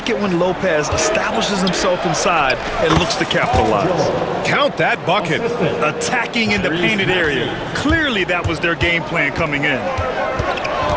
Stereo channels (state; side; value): identical; both; correlation 1.00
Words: it when Lopez establishes himself inside and looks to capitalize. Count that bucket. Attacking in the painted area. Clearly that was their game plan coming in.